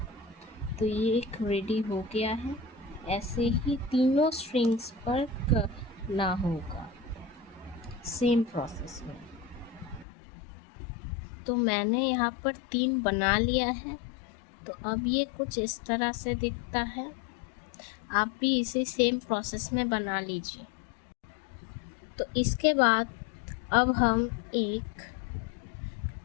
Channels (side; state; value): right; drops out; at 10.1 s